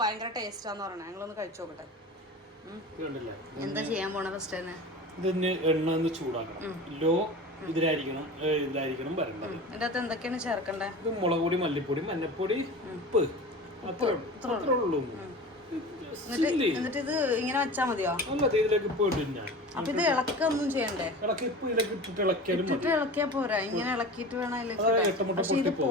ഭയങ്കര ടേസ്റ്റാന്ന് പറയണേ. ഞങ്ങളൊന്ന് കഴിച്ചു നോക്കട്ടെ. എന്താ ചെയ്യാൻ പോണ ഫസ്റ്റ് തന്നെ? ഇതിന് എണ്ണ ഒന്ന് ചൂടാക്കണം. ലോ ഇതിലായിരിക്കണം വരേണ്ടത്. ഇതിന്റെ അകത്ത് എന്തൊക്കെയാണ് ചേർക്കണ്ടേ? ഇത് മുളക് പൊടി, മല്ലിപ്പൊടി, മഞ്ഞപ്പൊടി, ഉപ്പ്, അത്രേ ഉള്ളൂ. എന്നിട്ട് ഇത് ഇങ്ങനെ വെച്ചാ മതിയോ? അല്ല, ഇതിലേക്ക് ഇപ്പൊ ഇടും ഞാൻ. അപ്പൊ ഇത് ഇളക്കൊന്നും ചെയ്യണ്ടേ? ഇട്ടിട്ട് ഇളക്കിയാ പോരാ, ഇങ്ങനെ ഇളക്കിയിട്ട് വേണം അതിലേക്ക്. പക്ഷെ ഇത്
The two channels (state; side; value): normal; both; correlation 0.34